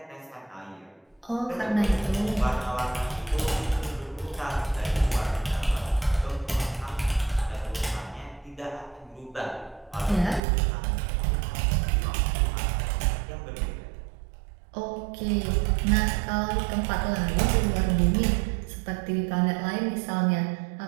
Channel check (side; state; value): left; drops out; at 10.4 s